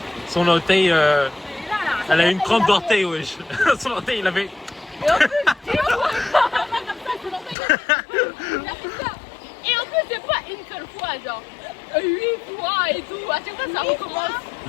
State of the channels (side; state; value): right; drops out; at 7.6 s